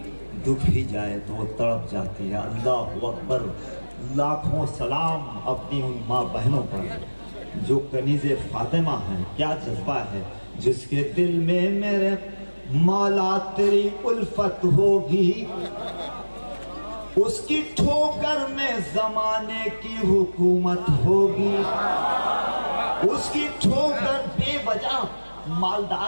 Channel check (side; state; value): both; inverted; correlation -1.00